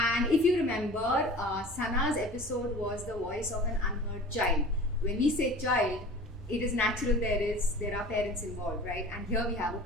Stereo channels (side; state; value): both; normal; correlation 0.41